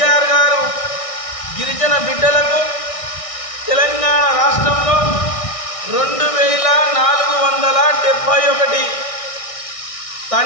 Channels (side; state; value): right; late; 1.6 ms